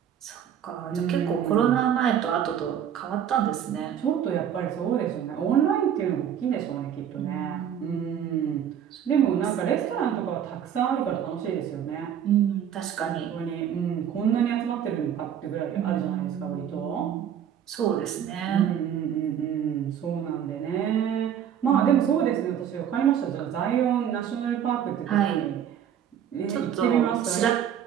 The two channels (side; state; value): left; quieter; 9.3 dB